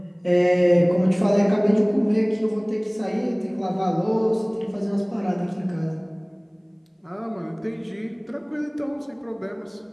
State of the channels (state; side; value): identical; both; correlation 1.00